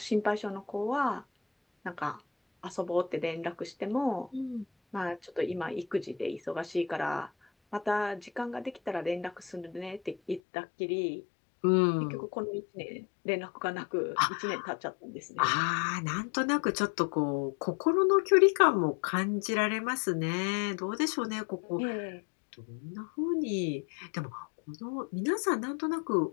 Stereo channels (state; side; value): drops out; right; at 10.4 s